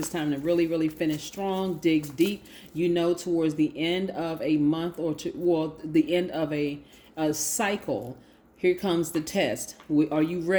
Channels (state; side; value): identical; both; correlation 1.00